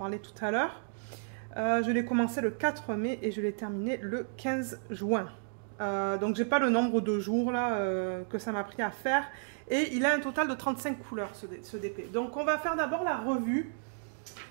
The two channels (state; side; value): silent; left; digital silence